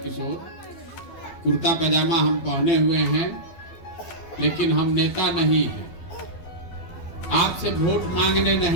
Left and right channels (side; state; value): right; late; 12 ms